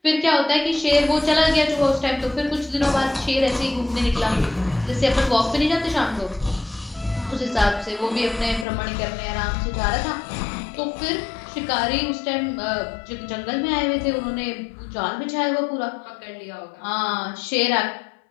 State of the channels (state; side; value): drops out; right; at 8.7 s